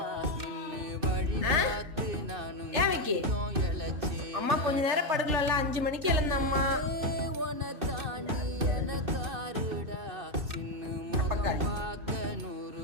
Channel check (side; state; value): left; late; 2.6 ms